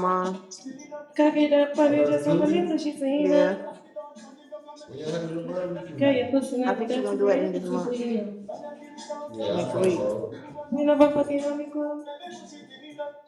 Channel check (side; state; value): both; identical; correlation 1.00